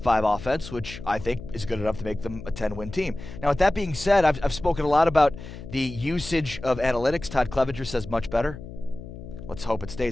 5 offense, which I think is good enough to make them a 10-win team. Now, with that being said, I've spoken a lot about the usage of analytics. Todd Clevenger says much better. Let's hope it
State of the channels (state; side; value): noise; left; hum, 13 dB below the sound